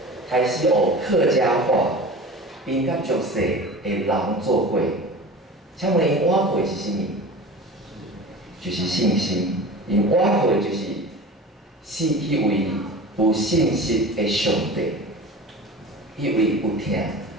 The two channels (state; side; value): normal; both; correlation 0.36